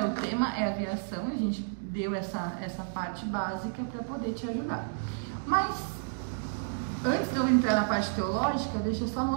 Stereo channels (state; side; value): silent; left; digital silence